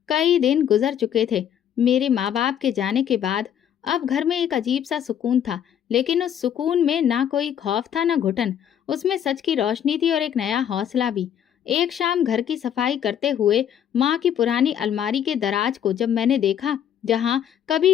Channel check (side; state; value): right; quieter; 9.5 dB